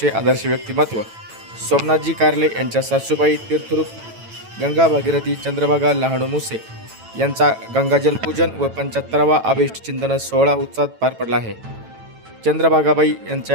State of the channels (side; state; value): left; late; 9.1 ms